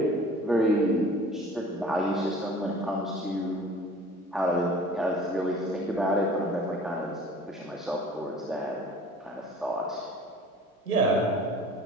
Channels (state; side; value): normal; both; correlation 0.46